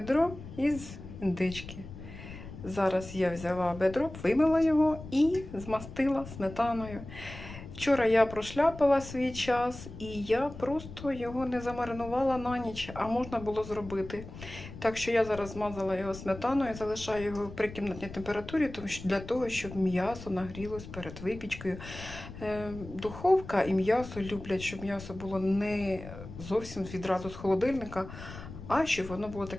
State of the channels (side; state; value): left; noise; rumble, 13 dB below the sound